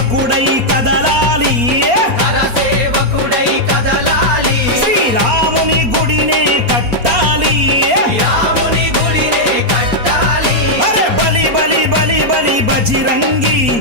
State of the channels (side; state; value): left; late; 4.3 ms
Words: కరసేవకుడై కదలాలి కరసేవకుడై కదలాలి శ్రీరాముని గుడినే కట్టాలి రాముని గుడినే కట్టాలి అరే బలి బలి బలి బలి బజిరంగి